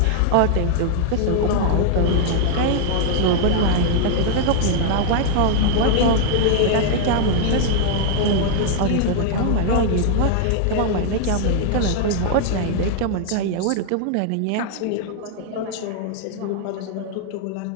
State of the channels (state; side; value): different; both; correlation 0.00